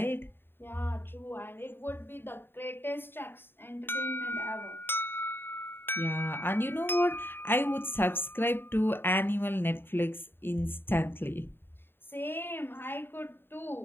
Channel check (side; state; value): right; late; 0.10 ms